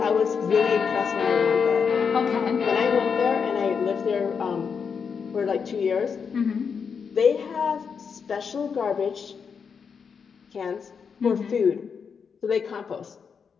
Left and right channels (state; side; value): quieter; right; 6.2 dB